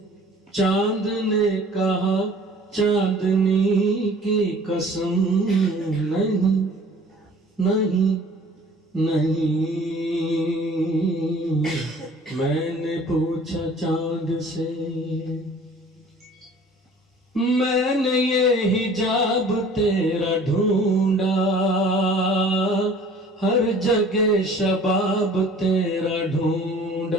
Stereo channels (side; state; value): both; normal; correlation 0.49